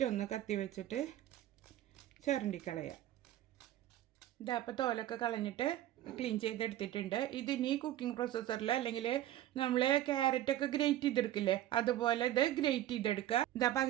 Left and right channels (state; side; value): quieter; left; 13.3 dB